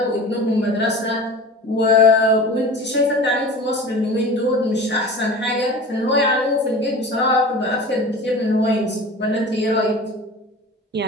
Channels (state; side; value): normal; both; correlation 0.37